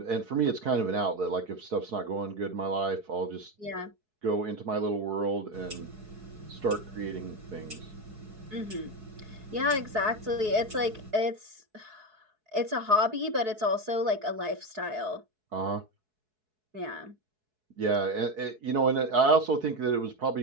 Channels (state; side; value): late; left; 4.7 ms